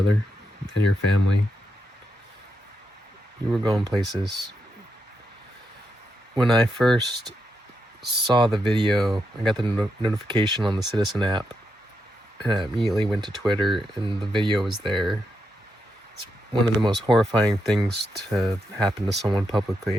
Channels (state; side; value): normal; both; correlation 0.84